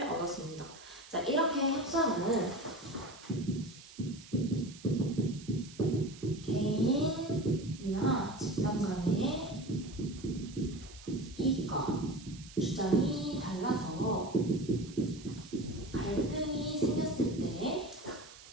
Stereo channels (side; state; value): right; noise; hiss, 19 dB below the sound